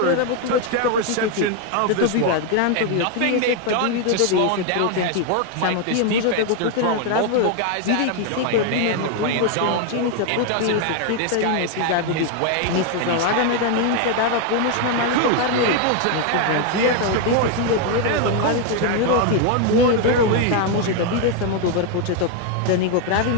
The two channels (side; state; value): both; different; correlation 0.01